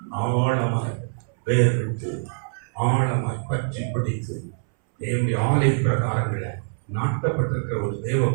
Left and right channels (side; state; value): left; silent; 62 dB below the other